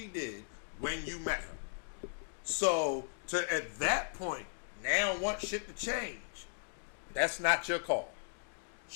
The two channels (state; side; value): silent; right; digital silence